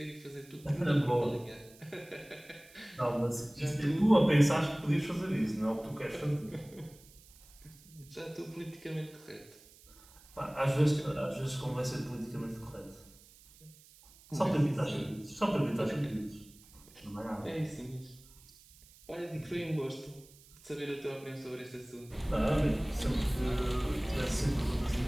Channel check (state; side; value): noise; right; hiss, 24 dB below the sound